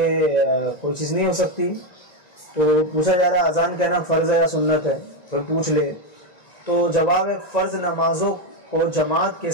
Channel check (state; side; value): late; right; 1.9 ms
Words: کوئی چیز نہیں ہو سکتی؟ تو پوچھا جا رہا ہے اذان کہنا فرض ہے یا سنت ہے، پھر پوچھ لے تو جواب ہے فرض نمازوں کو جماعت کے